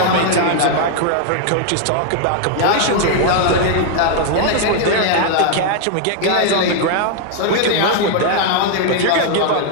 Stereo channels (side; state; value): both; different; correlation 0.00